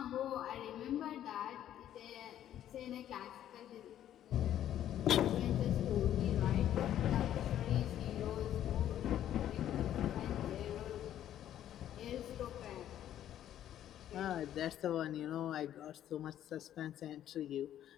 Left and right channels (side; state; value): right; quieter; 11.3 dB